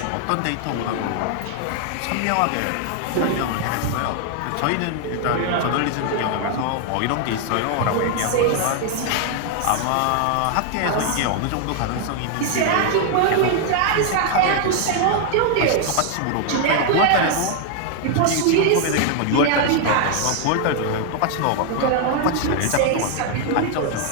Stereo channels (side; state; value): both; different; correlation 0.00